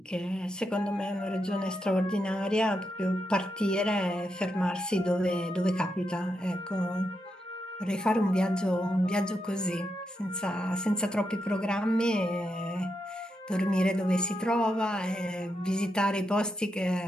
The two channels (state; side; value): normal; both; correlation 0.84